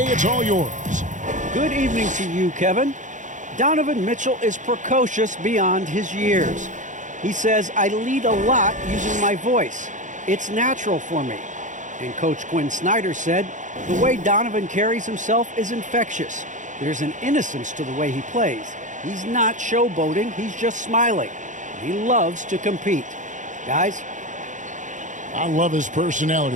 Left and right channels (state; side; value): late; left; 0.36 ms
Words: it's all yours. Good evening to you, Kevin. Donovan Mitchell is precocious beyond his years. He says, I lead a lot using my voice. It's natural for me. And Coach Quinn Snyder said, the way Donovan carries himself is infectious. There's an innocence to the way he plays. He's not showboating, he's just smiling. He loves to compete. Guys? I love his personality.